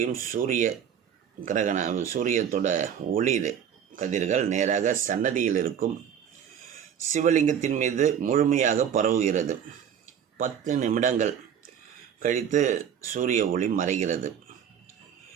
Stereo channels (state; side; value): quieter; left; 8.5 dB